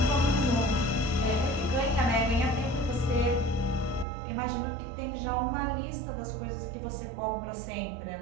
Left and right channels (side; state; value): left; drops out; at 4.0 s